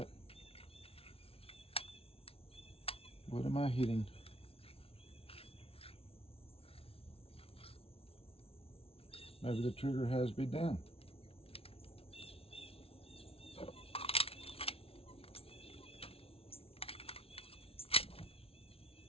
What am I hitting? Maybe the trigger has to be down.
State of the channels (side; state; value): right; late; 0.27 ms